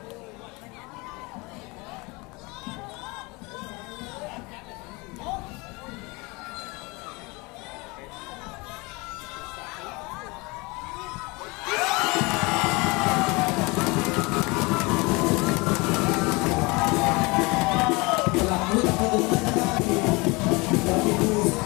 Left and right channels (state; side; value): quieter; right; 25.9 dB